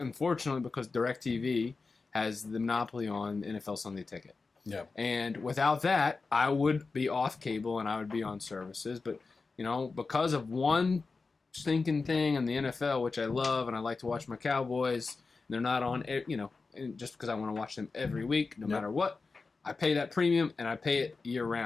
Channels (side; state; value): right; quieter; 4.2 dB